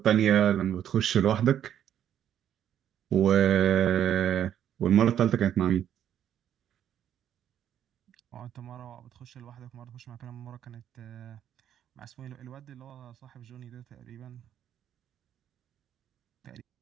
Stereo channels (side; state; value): left; quieter; 10.1 dB